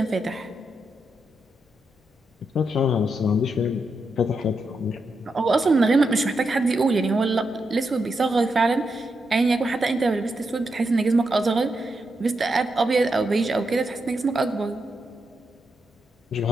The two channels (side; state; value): both; normal; correlation 0.84